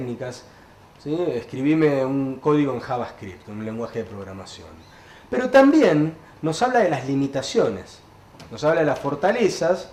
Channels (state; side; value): identical; both; correlation 1.00